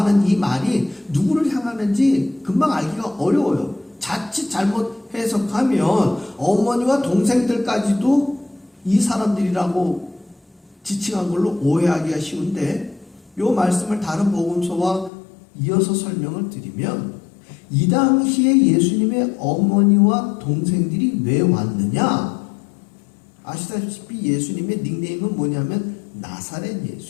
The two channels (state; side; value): drops out; right; at 15.1 s